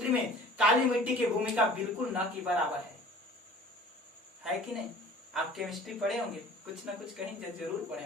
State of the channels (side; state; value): both; normal; correlation 0.46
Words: में काली मिट्टी की भूमिका बिल्कुल न की बराबर है कि नहीं? आप केमिस्ट्री पढ़े होंगे, कुछ ना कुछ कहीं जरूर पढ़े